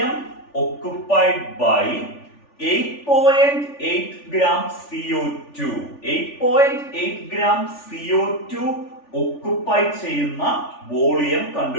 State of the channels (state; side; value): late; right; 3.4 ms